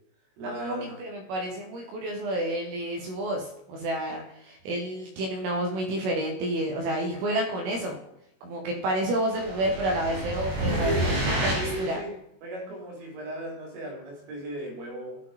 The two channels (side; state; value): left; late; 21 ms